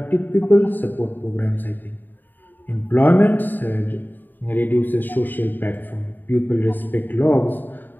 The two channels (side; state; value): right; late; 0.090 ms